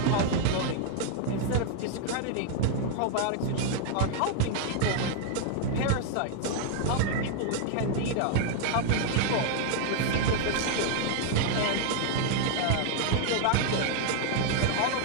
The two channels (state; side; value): different; both; correlation 0.00